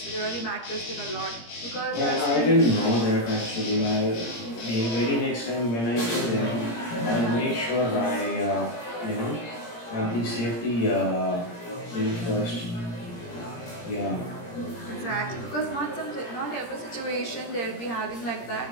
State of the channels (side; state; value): right; late; 17 ms